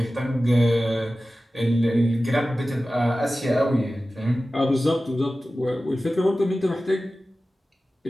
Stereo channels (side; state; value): both; normal; correlation 0.95